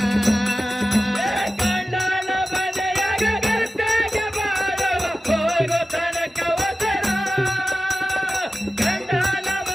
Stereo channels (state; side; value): normal; both; correlation 0.95